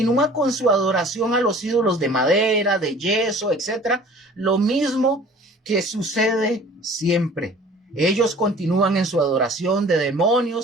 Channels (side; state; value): both; normal; correlation 0.48